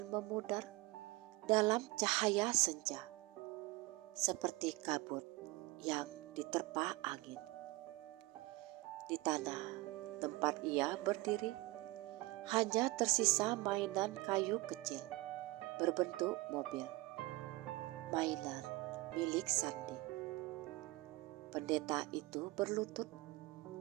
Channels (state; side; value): quieter; left; 21.3 dB